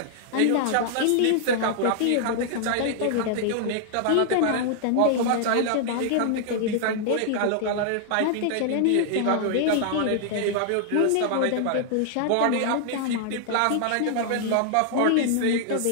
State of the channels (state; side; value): different; both; correlation 0.00